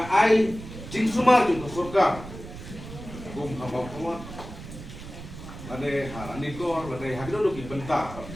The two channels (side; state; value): right; noise; rumble, 12 dB below the sound